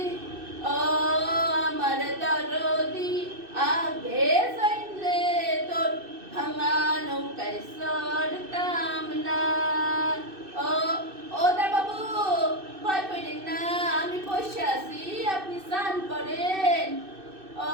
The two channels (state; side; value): late; left; 2.6 ms